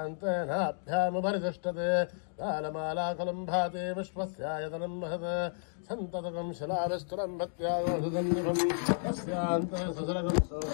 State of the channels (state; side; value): silent; right; digital silence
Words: कालमालाकुलं भाति विश्वस्यायतनं महत् सन्ततकं शिलाविस्तरं भक्त्यागोषदन्निभं तस्यान्ते ससरगं